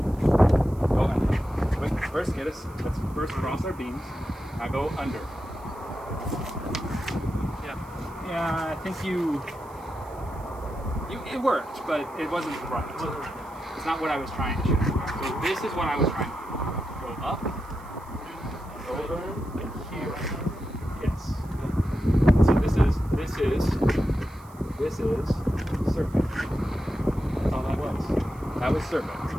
Go under. Wait, let's first cross our beams. Now go under. Yeah, I think it worked, but it wasn't right. It's not what I was trying to shoot. So this is what I was trying to do. Go up, and over, like here. Yes. So this is Serpent. That's all that was. That was Serpent.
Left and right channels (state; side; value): noise; right; hiss, 26 dB below the sound